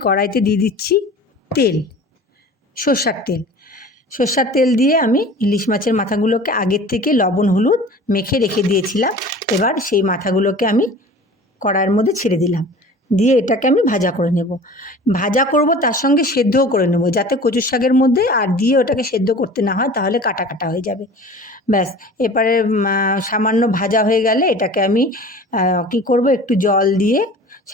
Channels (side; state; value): both; normal; correlation 0.41